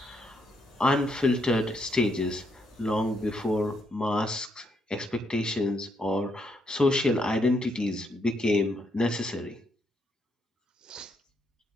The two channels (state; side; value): normal; both; correlation 0.76